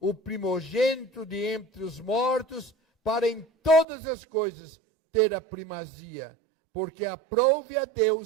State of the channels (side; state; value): left; drops out; at 3.9 s